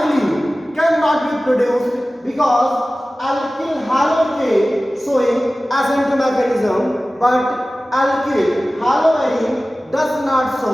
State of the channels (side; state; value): both; normal; correlation 0.97